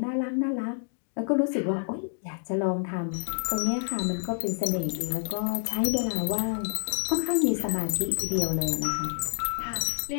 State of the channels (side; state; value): right; silent; digital silence